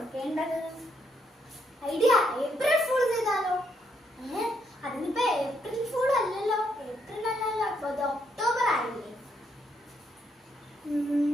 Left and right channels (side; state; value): both; normal; correlation 0.75